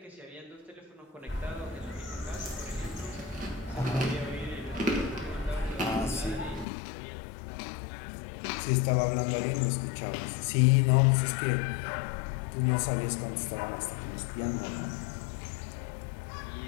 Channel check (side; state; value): right; drops out; at 6.7 s